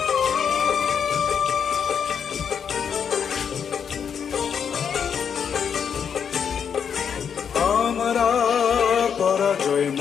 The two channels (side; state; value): right; quieter; 7.4 dB